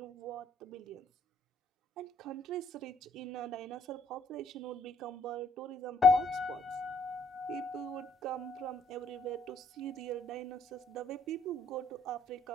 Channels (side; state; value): both; normal; correlation 0.66